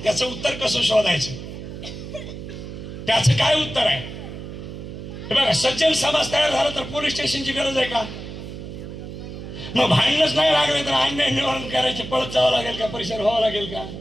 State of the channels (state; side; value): noise; right; hum, 10 dB below the sound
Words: त्याचं उत्तर कसं शोधायचं? त्याचं काय उत्तर आहे? हे बघा, सज्जन समाज तयार झाला तर पोलीस स्टेशनची गरज आहे का? मग भांडणच नाही लागले तर अन्याय निवारण करायचे पळत जावं लागेल का? परिसर व्हावं लागेल का?